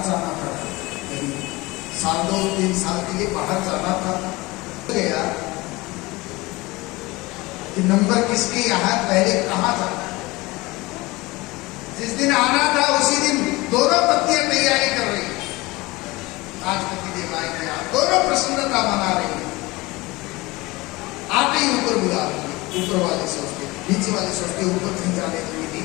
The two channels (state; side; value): quieter; right; 21.9 dB